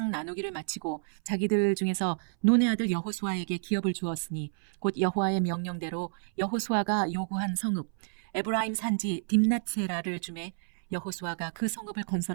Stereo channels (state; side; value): silent; left; 58 dB below the other